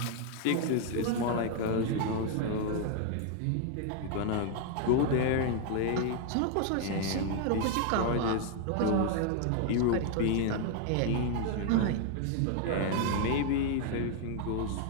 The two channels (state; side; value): different; both; correlation 0.00